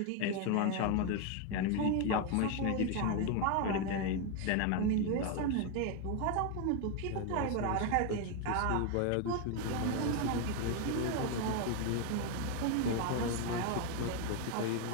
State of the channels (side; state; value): both; different; correlation 0.01